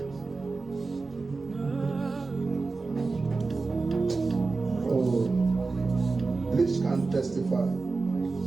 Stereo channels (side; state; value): left; quieter; 3.8 dB